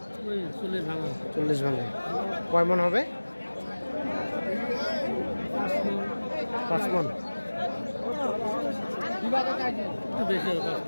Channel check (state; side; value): inverted; both; correlation -1.00